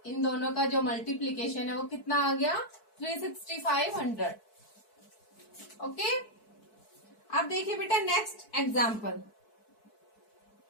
इन दोनों का जो मल्टीप्लीकेशन है वो कितना आ गया, 36500। ओके, अब देखिए बेटा नेक्स्ट एग्जाम्पल।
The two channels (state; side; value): late; right; 4.6 ms